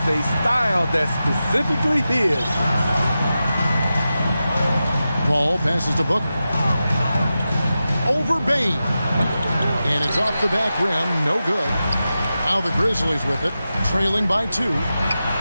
a style that's specifically his. Paul passes to Booker. Over Bane. And it's off the back rim. No good. Now the Grizzlies with it, trailing by 2.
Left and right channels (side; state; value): both; inverted; correlation -0.92